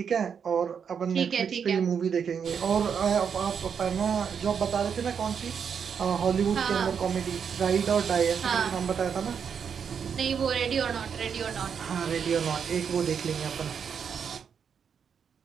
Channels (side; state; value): left; quieter; 7.0 dB